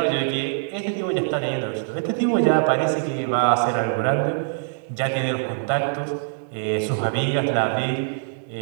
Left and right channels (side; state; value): left; silent; digital silence